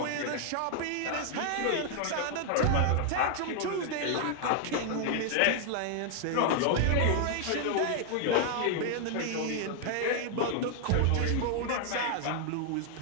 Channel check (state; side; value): different; both; correlation 0.00